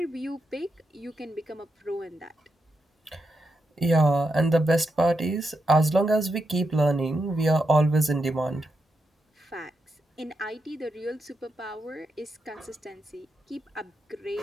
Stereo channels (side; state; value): both; normal; correlation 0.85